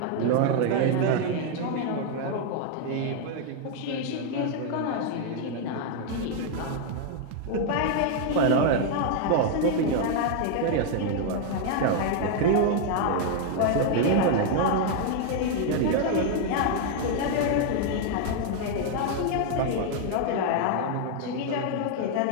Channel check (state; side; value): different; both; correlation 0.00